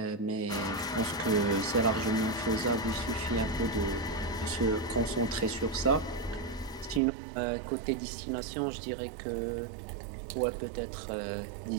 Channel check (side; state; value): left; drops out; at 7.0 s